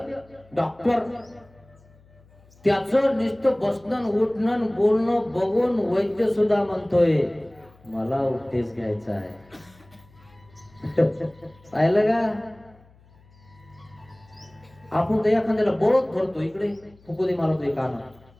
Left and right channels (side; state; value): left; noise; hum, 28 dB below the sound